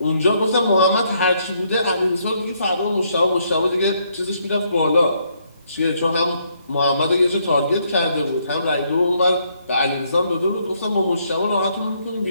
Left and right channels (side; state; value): both; inverted; correlation -0.72